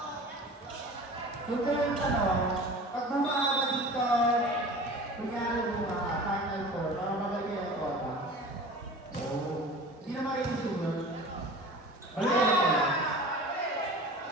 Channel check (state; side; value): normal; both; correlation 0.39